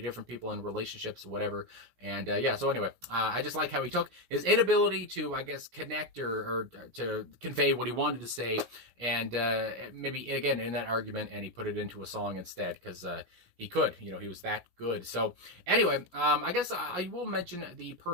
in relationships, whatever. And so anyway, I just like how he took his inability to, I guess, connect or to convey what he wanted to say, and maybe again in that argument, and he put it into a song instead, because he could, he was that good. So anyway, I guess I will mention the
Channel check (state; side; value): late; left; 17 ms